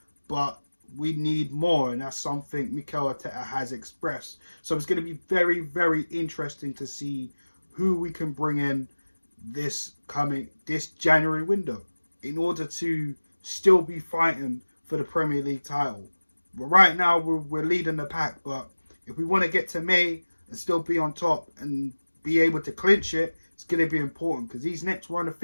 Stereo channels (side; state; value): both; inverted; correlation -1.00